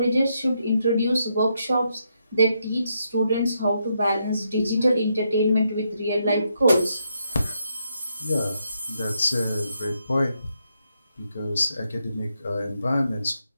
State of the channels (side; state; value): both; inverted; correlation -0.79